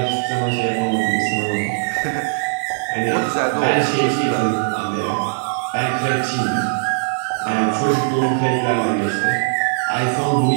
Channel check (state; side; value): silent; left; digital silence